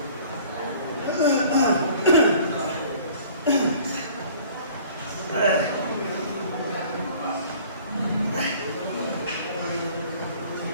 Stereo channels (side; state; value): both; inverted; correlation -0.51